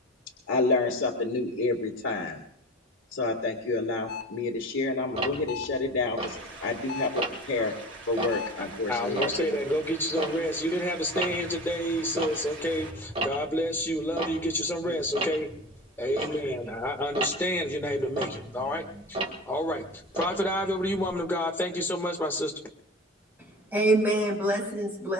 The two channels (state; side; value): normal; both; correlation 0.35